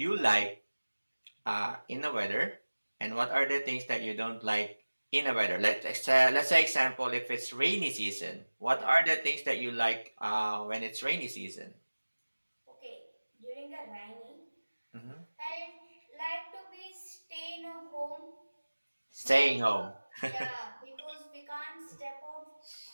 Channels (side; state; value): both; inverted; correlation -1.00